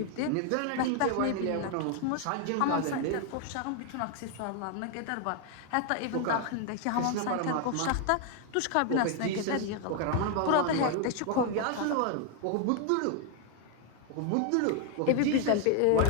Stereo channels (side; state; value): both; different; correlation 0.00